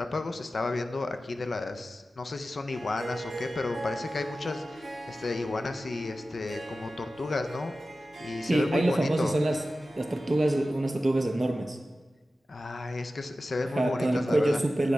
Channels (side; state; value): both; normal; correlation 0.94